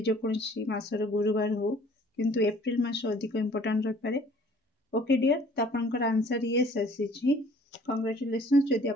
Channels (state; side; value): normal; both; correlation 0.54